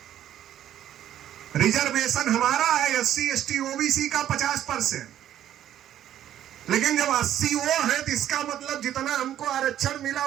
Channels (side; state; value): left; quieter; 11.4 dB